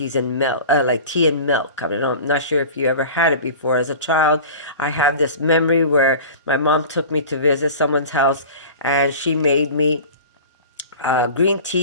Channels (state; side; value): inverted; both; correlation -0.37